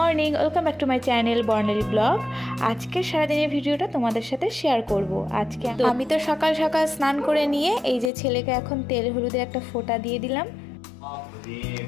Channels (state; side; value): drops out; right; at 8.1 s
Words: welcome back to my channel Barnali blog. আজকে সারাদিনের ভিডিওটা তোমাদের সাথে শেয়ার করব। আজকে আমি তো সকাল সকাল স্নান করে নিয়ে এই যে ছেলেকে এখন তেল হলুদের একটা ফোঁটা দিয়ে দিলাম।